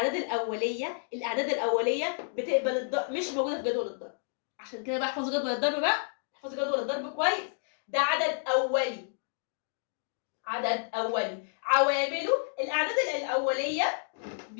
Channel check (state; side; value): silent; right; digital silence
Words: الأولية بتقبل الضرب، مش موجودة في جدول الضرب. عشان كده بقى احفظوا جدول الضرب بقى، احفظوا جدول الضرب كويس. ده عدد أولي، عوامله الأعداد الأولية